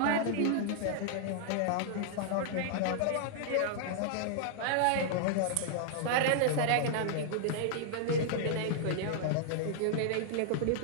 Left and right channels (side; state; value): both; different; correlation -0.01